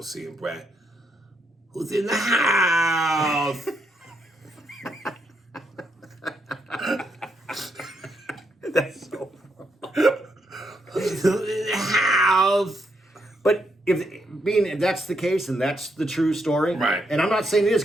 seeing Brad. Who's in the house? That's so. Who's in the house? But if that's the case and that's the true story, Right? And I'm not saying it is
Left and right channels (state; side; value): normal; both; correlation 0.78